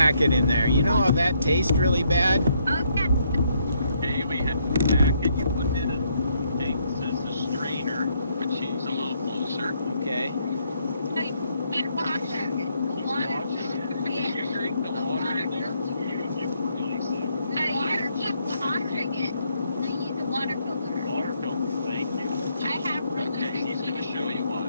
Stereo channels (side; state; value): both; inverted; correlation -0.73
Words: in there. You know how that tastes really bad? Okay. Okay, we have the packet. You put in a thing that says the strainer, which is a little closer. Okay. You wash it. Water. You drink the water in there? No, you keep washing it. So you use a water filter. Water filter, thank you. I have one. Okay, he's gonna show you what.